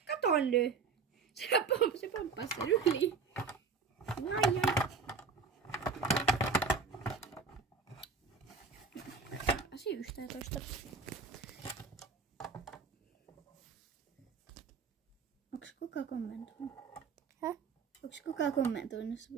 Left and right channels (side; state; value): left; quieter; 5.0 dB